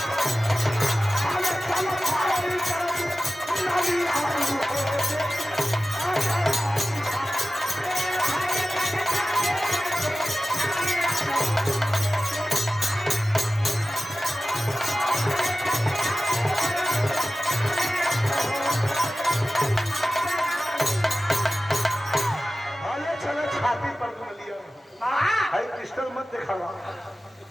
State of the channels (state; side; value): normal; both; correlation 0.96